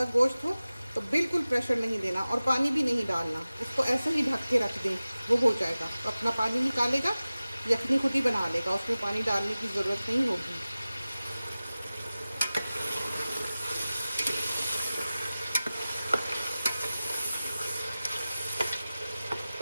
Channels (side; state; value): both; inverted; correlation -0.96